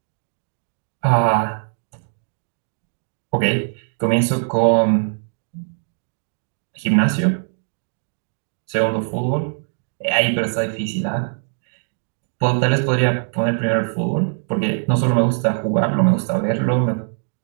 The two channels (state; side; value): silent; left; digital silence